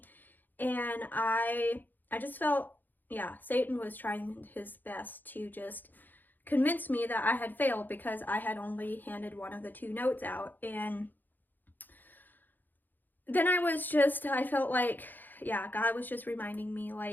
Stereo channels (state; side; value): late; right; 0.088 ms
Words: and I just felt, Satan was trying his best to just convince me that I had failed because I had only handed one of the two notes out. And then I felt like, God was just reminding me,